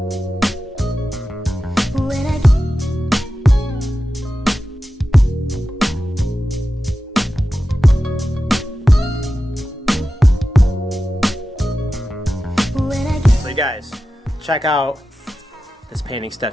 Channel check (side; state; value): both; normal; correlation 0.92